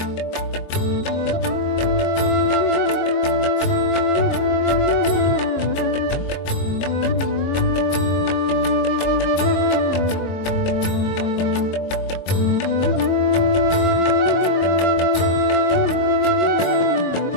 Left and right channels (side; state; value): right; late; 22 ms